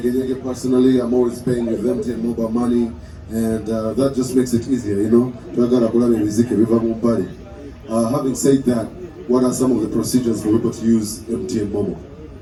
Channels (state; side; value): identical; both; correlation 1.00